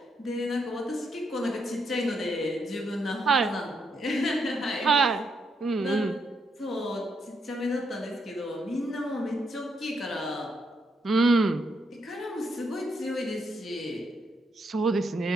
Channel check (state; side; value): normal; both; correlation 0.78